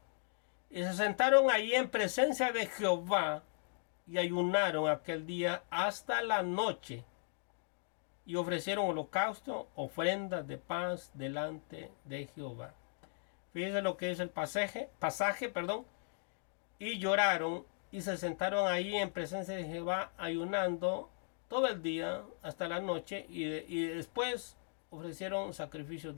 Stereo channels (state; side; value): silent; right; digital silence